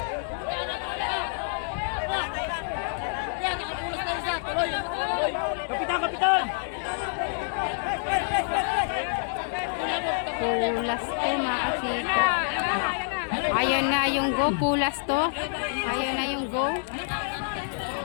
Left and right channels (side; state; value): right; silent; digital silence